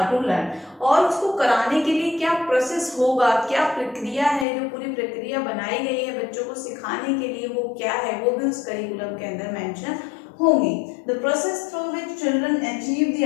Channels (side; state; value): right; drops out; at 4.5 s